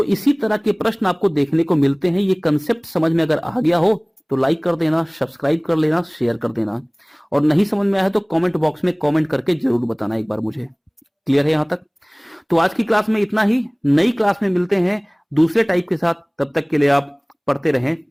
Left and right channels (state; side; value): identical; both; correlation 1.00